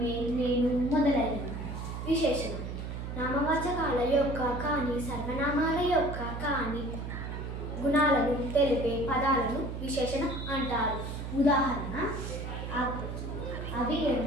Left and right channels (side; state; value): right; noise; hum, 6 dB below the sound